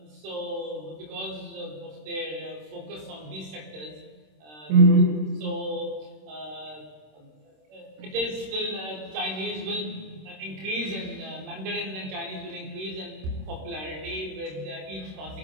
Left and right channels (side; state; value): left; late; 26 ms